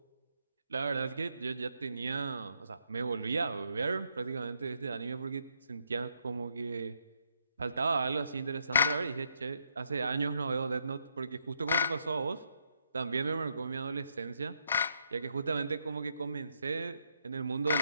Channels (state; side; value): inverted; both; correlation -0.77